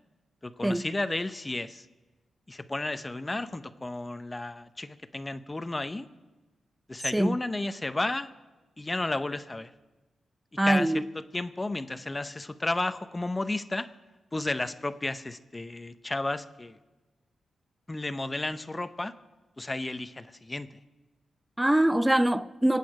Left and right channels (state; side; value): normal; both; correlation 0.98